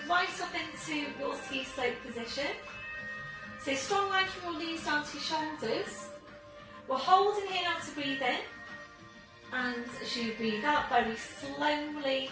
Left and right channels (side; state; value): both; identical; correlation 1.00